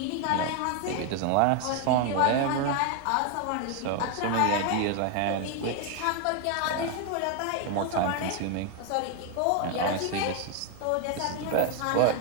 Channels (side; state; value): both; different; correlation 0.01